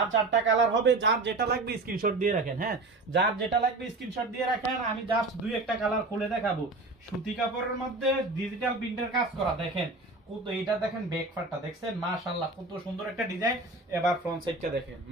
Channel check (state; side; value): quieter; left; 3.1 dB